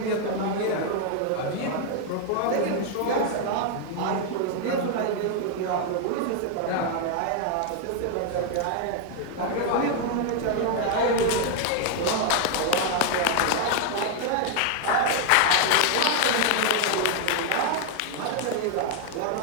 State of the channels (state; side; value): different; both; correlation 0.00